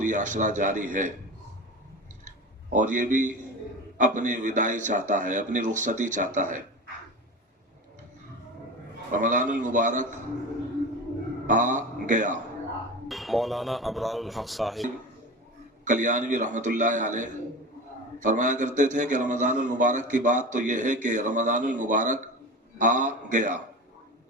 ये अशरा जारी है, और ये भी अपनी विदाई चाहता है, अपनी रुखसती चाहता है। रमज़ानुल मुबारक आ गया। मौलाना अबरारुल हक साहिब कल्याणवी रहमतुल्लाह अलैह फरमाया करते थे कि रमज़ानुल मुबारक की बात तो यह है कि रमज़ानुल मुबारक आ गया,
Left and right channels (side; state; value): both; normal; correlation 0.30